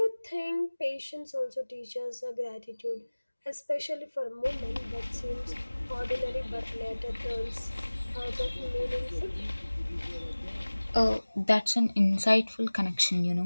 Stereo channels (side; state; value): both; inverted; correlation -1.00